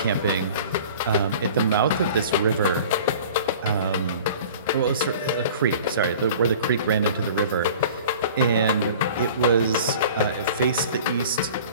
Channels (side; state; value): both; inverted; correlation -0.44